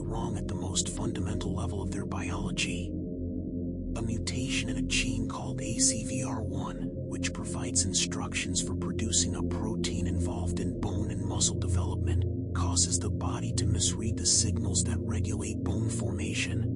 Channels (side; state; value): both; identical; correlation 1.00